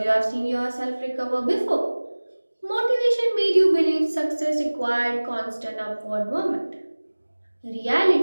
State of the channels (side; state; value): both; inverted; correlation -1.00